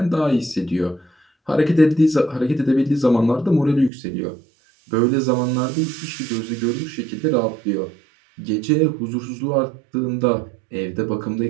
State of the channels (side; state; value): left; drops out; at 3.9 s